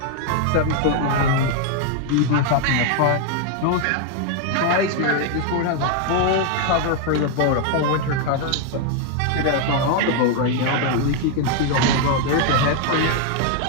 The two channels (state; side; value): different; both; correlation 0.00